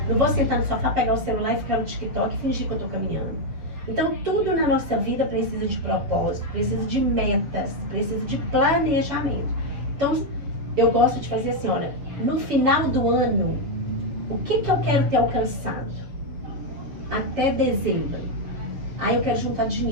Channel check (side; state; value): left; late; 7.2 ms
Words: Não vou sentar no sofá, pegar o celular e ficar no TikTok e fingir que eu estou caminhando. Então, tudo na nossa vida precisa de propósito, precisa de metas, precisa de planejamento. Então, eu gosto de fazer assim, olha, no final do ano, o que eu quero ter alcançado? Até dezembro. Aí eu quero juntar